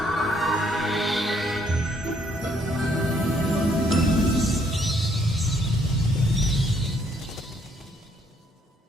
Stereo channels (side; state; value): both; normal; correlation 0.68